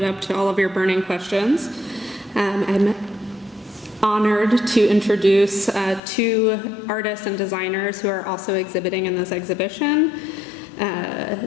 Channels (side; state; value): right; drops out; at 6.0 s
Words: up to all of your burning questions. I'm honored to introduce 2 artists and designers who are also exhibiting in this exhibition,